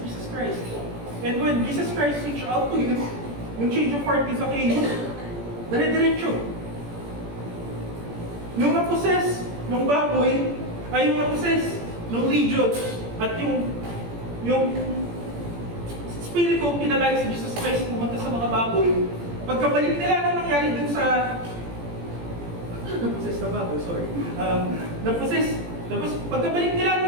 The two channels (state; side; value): late; left; 17 ms